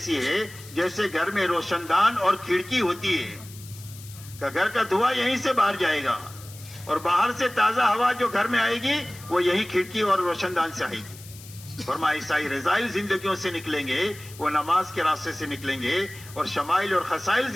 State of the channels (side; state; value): left; noise; hiss, 18 dB below the sound